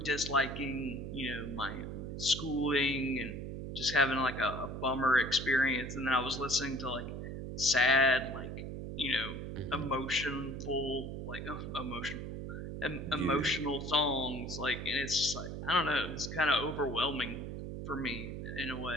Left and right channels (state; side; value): noise; right; hum, 6 dB below the sound